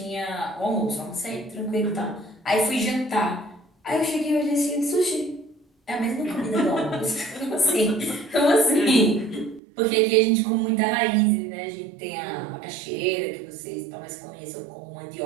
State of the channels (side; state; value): left; drops out; at 9.6 s